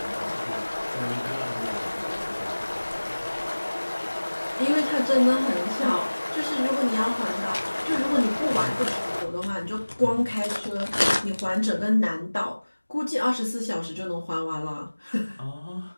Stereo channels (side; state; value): both; inverted; correlation -1.00